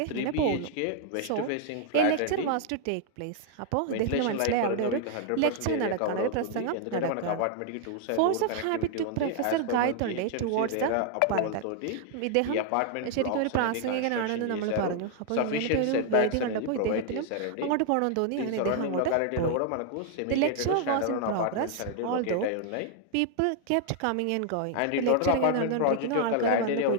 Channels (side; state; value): both; different; correlation 0.00